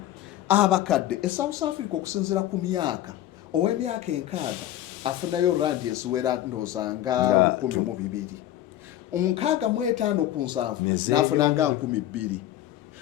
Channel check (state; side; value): quieter; right; 13.0 dB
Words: abakadde. South Africa okusinziira ku myaka ow'emyaka 6 afunayo randi eziwera ndooza nga 1,200. 65 ku 7 n'afuna nga 2,000.